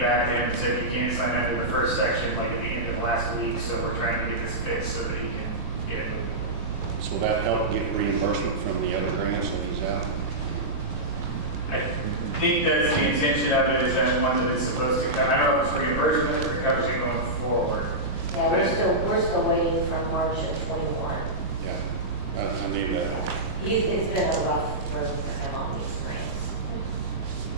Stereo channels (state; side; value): noise; right; rumble, 7 dB below the sound